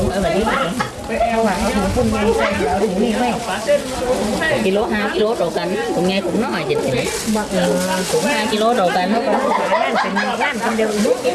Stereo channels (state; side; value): identical; both; correlation 1.00